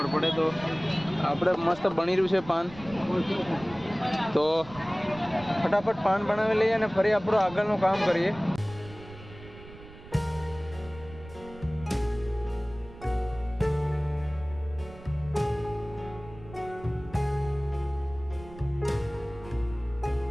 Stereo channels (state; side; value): noise; right; rumble, 17 dB below the sound